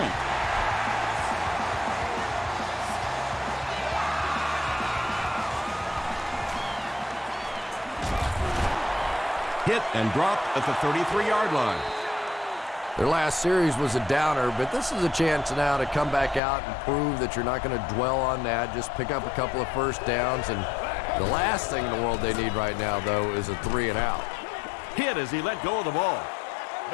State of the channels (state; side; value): drops out; right; at 16.4 s